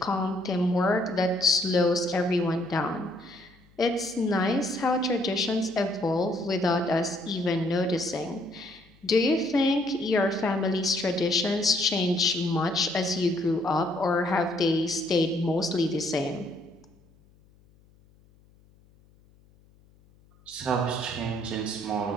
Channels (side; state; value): left; noise; hum, 30 dB below the sound